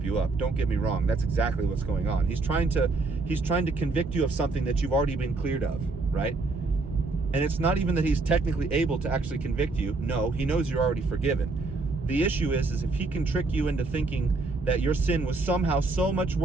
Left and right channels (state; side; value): quieter; left; 3.5 dB